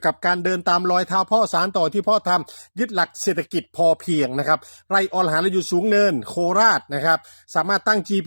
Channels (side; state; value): both; inverted; correlation -1.00